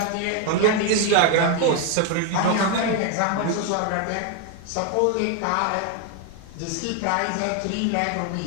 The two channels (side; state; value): both; different; correlation 0.01